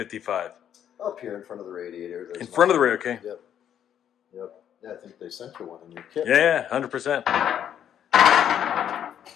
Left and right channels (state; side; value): quieter; right; 9.7 dB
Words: up here in front of the radiator. There's In front of the radio, okay. Yep. Yeah, I think they sent you one in your kit. Yeah, 100%.